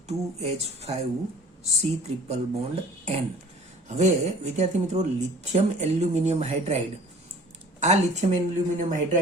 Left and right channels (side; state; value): both; normal; correlation 0.48